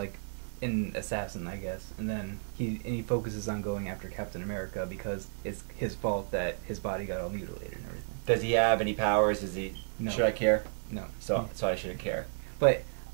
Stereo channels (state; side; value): silent; left; 56 dB below the other